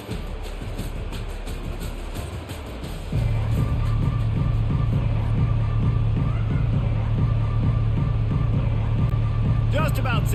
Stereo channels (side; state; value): both; identical; correlation 1.00